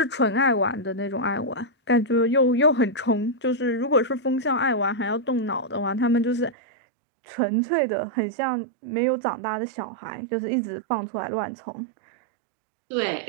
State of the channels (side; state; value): left; drops out; at 6.6 s